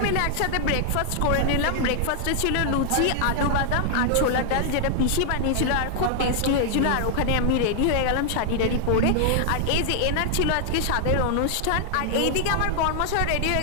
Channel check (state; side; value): different; both; correlation 0.00